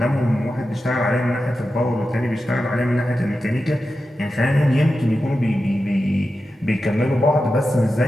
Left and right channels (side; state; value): both; normal; correlation 0.91